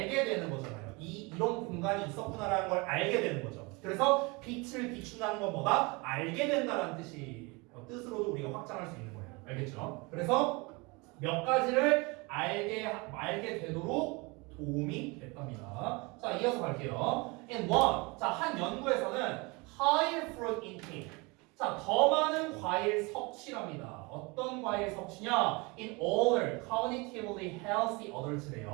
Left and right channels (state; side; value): quieter; left; 27.0 dB